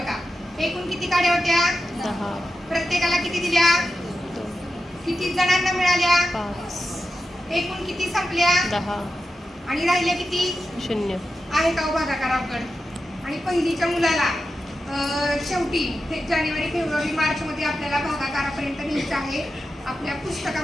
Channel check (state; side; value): normal; both; correlation 0.91